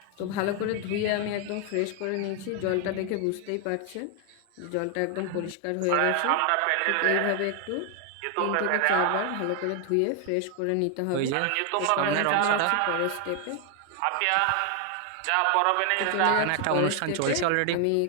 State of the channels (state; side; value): different; both; correlation 0.00